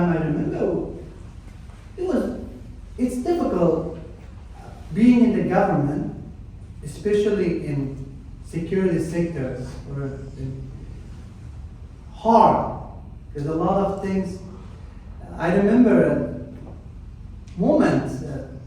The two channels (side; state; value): both; identical; correlation 1.00